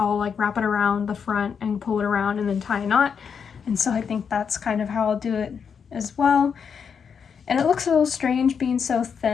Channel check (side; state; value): right; quieter; 6.7 dB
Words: like wrap it around the front and pull it around and then tie a knot, and so I think that's kind of how I'll do it as well. And it looks a little strange being so